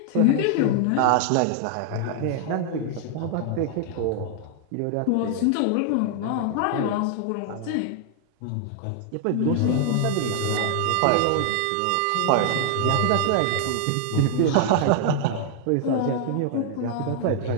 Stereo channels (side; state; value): both; different; correlation 0.00